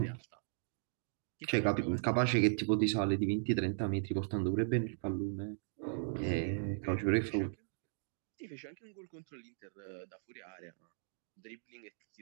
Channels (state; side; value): silent; left; digital silence